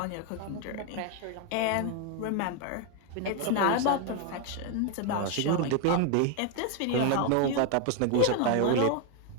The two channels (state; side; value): different; both; correlation 0.01